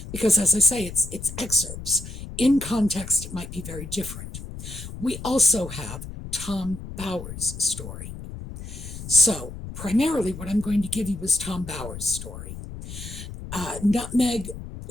because, as I say, it's excerpts. In context, it might be very different. We also have Tom Bowers' story. So, primarily what I'm going to give you is Tom Bowers' story. Nutmeg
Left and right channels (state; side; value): noise; left; rumble, 11 dB below the sound